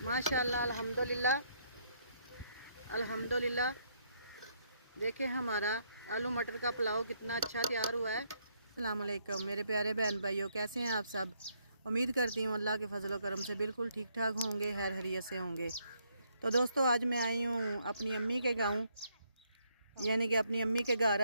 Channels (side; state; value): both; inverted; correlation -0.73